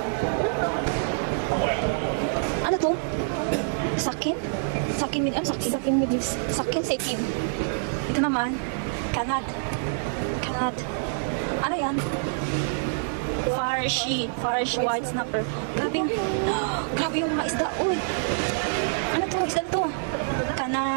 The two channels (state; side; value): silent; left; 61 dB below the other